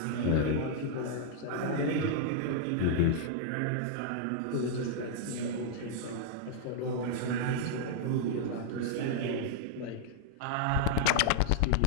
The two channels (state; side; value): different; both; correlation -0.01